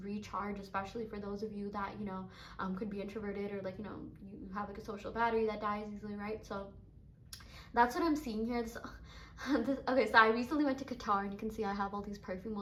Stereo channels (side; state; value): both; identical; correlation 1.00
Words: recharge, especially for those of you that, you know, could be introverted, or like, you know, you have like a social battery that dies easily, right? So that's what I'm seeing here. Okay, so I recently went to Qatar, and you can see I have all these perfume